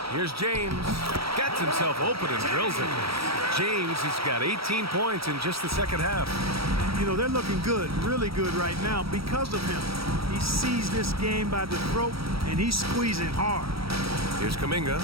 Here's James. Gets himself open and drills it. James has got 18 points in just the second half. You know, they're looking good, really good right now because of him. He sees this game by the throat, and he's squeezing hard. Here's Kuminga.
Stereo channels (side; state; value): left; late; 0.76 ms